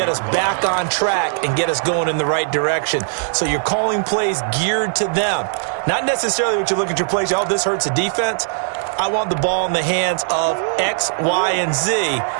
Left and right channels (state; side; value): silent; left; digital silence